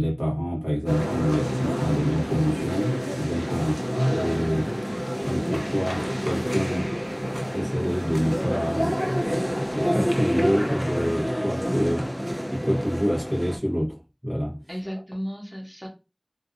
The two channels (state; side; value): identical; both; correlation 1.00